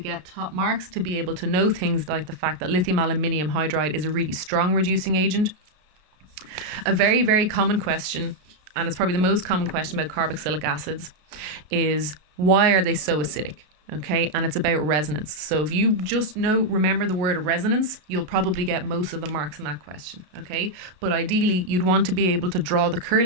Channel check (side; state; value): left; late; 33 ms